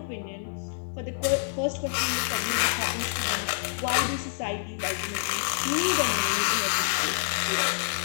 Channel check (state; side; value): silent; right; 60 dB below the other